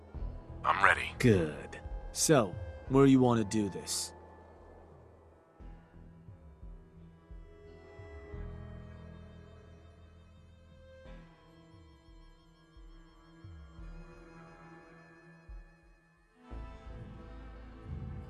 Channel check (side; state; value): both; identical; correlation 1.00